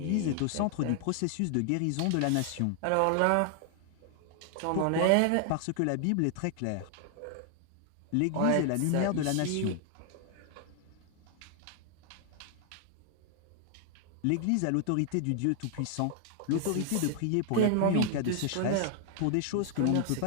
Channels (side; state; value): both; different; correlation 0.00